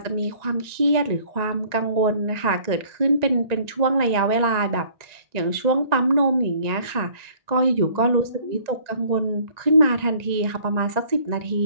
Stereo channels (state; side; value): late; left; 1.9 ms